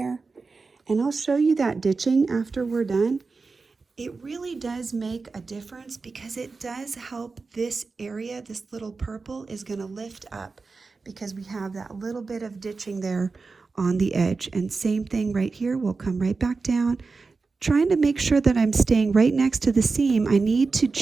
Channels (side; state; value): left; quieter; 4.2 dB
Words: And I'll show you that ditching after we're done. It really does make a difference because it does help this area. This little purple is going to lift up because we have that little bit of ditching there on the edge. And same thing right here, we'll come right back down. Trying to make sure that I'm staying right next to the seam. I need to